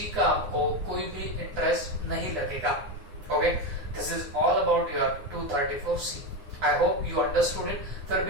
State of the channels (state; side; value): late; left; 9.8 ms